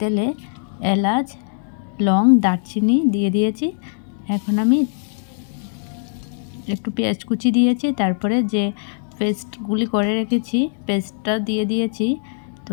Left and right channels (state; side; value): silent; right; digital silence